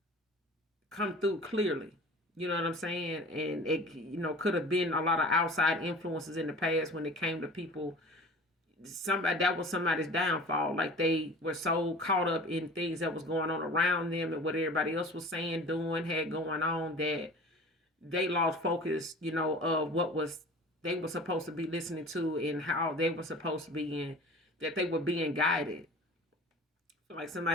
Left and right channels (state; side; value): normal; both; correlation 0.41